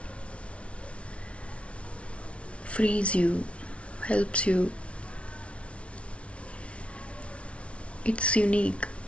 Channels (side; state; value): right; late; 0.061 ms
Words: frees you, helps you. It's unique